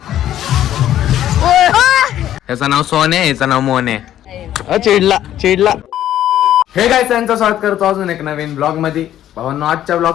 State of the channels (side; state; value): right; quieter; 11.9 dB